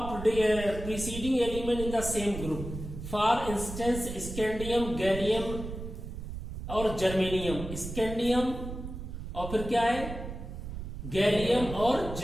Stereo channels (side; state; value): right; noise; rumble, 8 dB below the sound